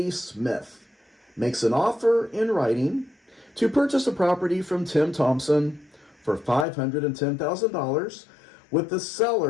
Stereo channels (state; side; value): drops out; right; at 6.7 s